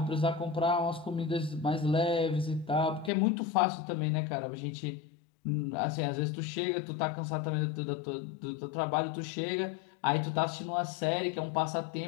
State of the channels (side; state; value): right; drops out; at 3.1 s